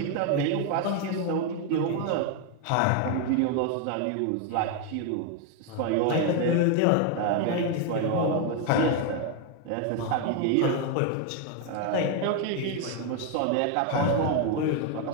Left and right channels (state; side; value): different; both; correlation 0.01